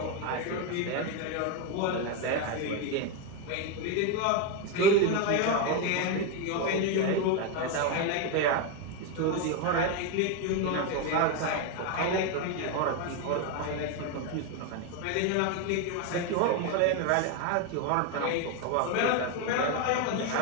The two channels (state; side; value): different; both; correlation 0.02